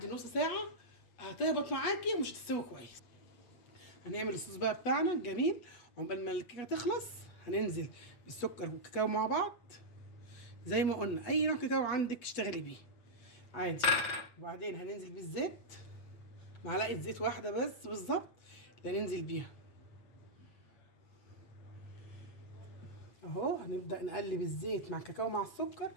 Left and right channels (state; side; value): late; right; 8.2 ms